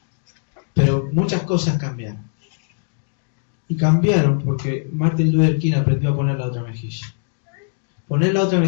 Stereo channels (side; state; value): right; silent; digital silence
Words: Pero muchas cosas cambiaron. Y cambiaron porque Martin Luther King aprendió a poner la otra mejilla. Poner la otra